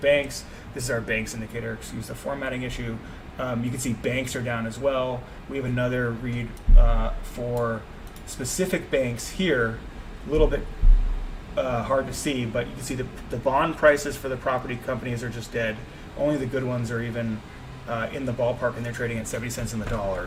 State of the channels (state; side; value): identical; both; correlation 1.00